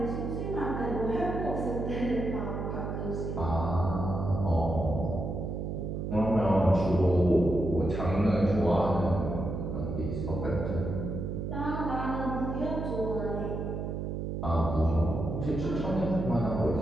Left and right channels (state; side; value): noise; right; hum, 4 dB below the sound